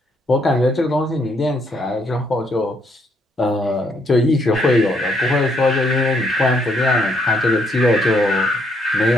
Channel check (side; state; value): both; normal; correlation 0.72